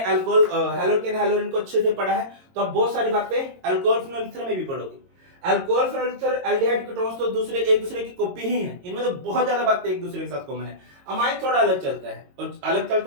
अल्कोहल, हैलोकेन, हैलोरिन को अच्छे से पढ़ा है तो आप बहुत सारी बातें अल्कोहल फिनोल ईथर में भी पढ़ोगे। Alcohol phenol ether, aldehyde ketones तो दूसरे एक दूसरे की कॉपी ही है, इनमें तो बहुत ज्यादा बातें एक दूसरे के साथ कॉमन है। अमाइन थोड़ा अलग चलता है, और अलग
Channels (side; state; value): left; late; 22 ms